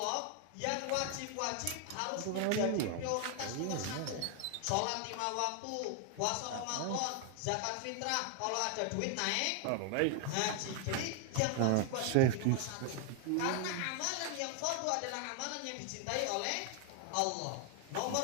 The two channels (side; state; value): both; different; correlation 0.00